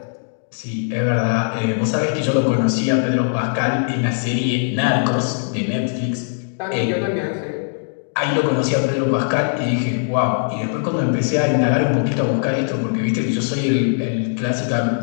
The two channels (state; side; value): silent; right; 66 dB below the other